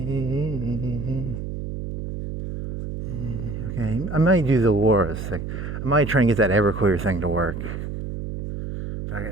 Okay, I might do the Laura's thing. I might try and get that Everclear thing to work.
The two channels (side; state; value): right; noise; hum, 6 dB below the sound